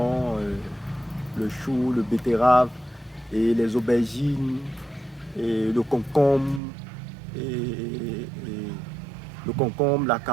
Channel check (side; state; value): left; drops out; at 6.6 s